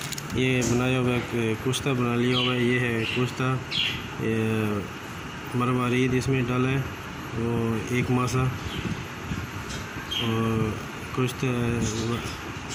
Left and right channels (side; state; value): both; identical; correlation 1.00